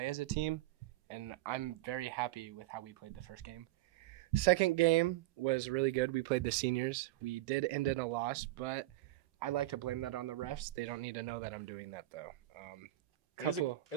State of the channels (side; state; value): left; quieter; 16.4 dB